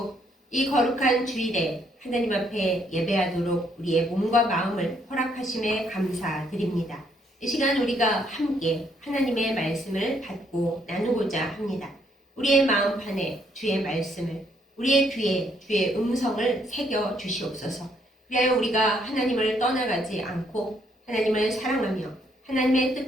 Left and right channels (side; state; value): both; normal; correlation 0.70